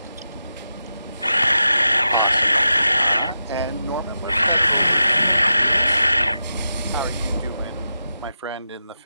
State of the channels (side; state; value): both; inverted; correlation -0.89